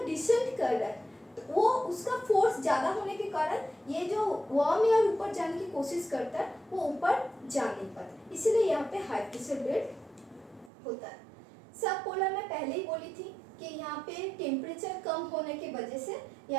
डिसेंट कर रहा है वो उसका फोर्स ज़्यादा होने के कारण ये जो वार्म एयर ऊपर जाने की कोशिश करता है वो ऊपर जा नहीं पाता, इसीलिए यहाँ पे हाई प्रेशर बेल्ट होता है। सब पोलर में पहले ही बोली थी कि यहाँ पे टेम्परेचर कम होने की वजह से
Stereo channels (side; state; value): left; drops out; at 10.7 s